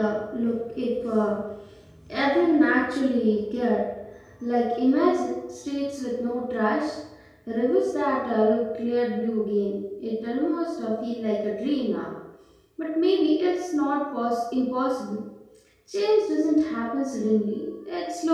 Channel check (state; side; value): identical; both; correlation 1.00